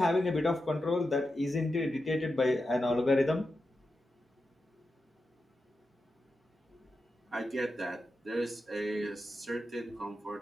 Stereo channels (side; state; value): both; normal; correlation 0.89